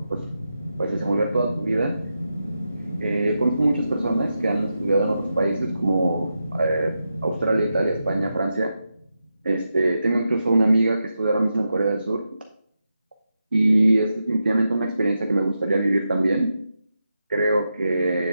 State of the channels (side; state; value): both; inverted; correlation -0.88